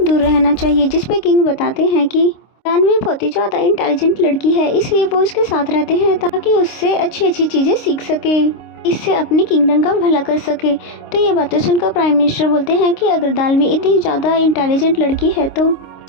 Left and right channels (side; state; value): right; late; 26 ms